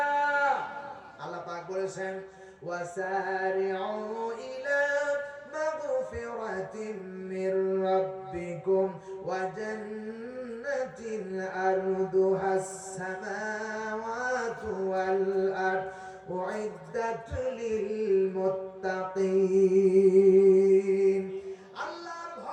আল্লাহ পাক বলেছেন ওয়াসারিউ ইলা মাগফিরাতিন মির রাব্বিকুম ওয়া জান্নাতিন আরদুহাস সামাওয়াতু ওয়াল আরদ উইদ্দাত লিল মুত্তাকিন। আল্লাহর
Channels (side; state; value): both; identical; correlation 1.00